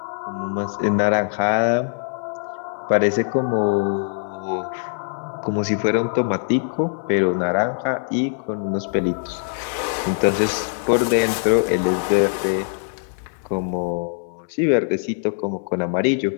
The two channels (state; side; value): silent; right; 59 dB below the other